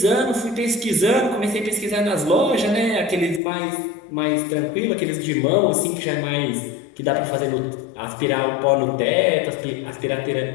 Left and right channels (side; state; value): right; drops out; at 3.4 s